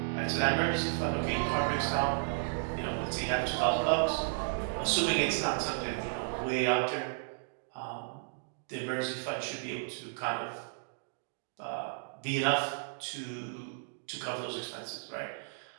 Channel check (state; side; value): silent; left; digital silence